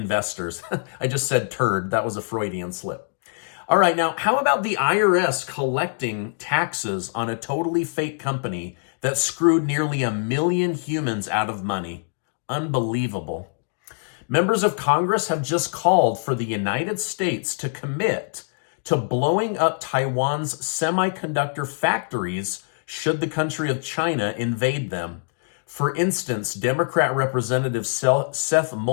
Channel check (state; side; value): silent; right; digital silence